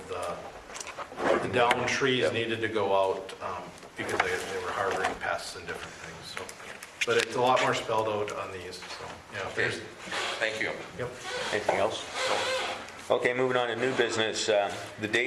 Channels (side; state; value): both; identical; correlation 1.00